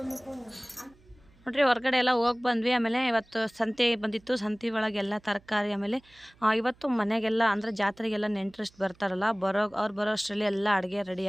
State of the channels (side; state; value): right; noise; hum, 29 dB below the sound